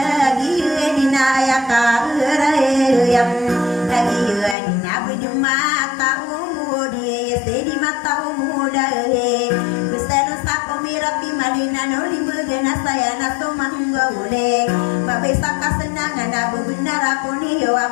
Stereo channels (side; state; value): right; drops out; at 4.5 s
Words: gina aya karayam lagi dina bujumata umudi sedi mata umuda kusano sakomira pimalina no libena saya na tomanggaule babesa kasenangan abu benar aku ni